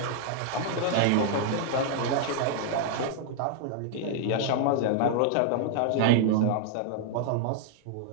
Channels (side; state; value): both; different; correlation 0.00